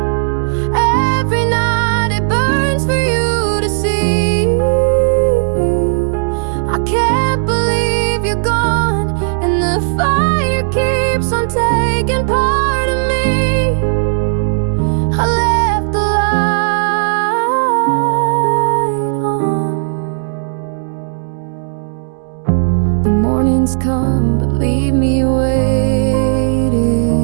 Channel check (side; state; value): left; silent; digital silence